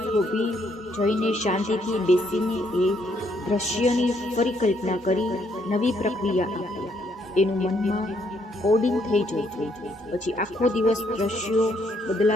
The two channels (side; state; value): both; normal; correlation 0.71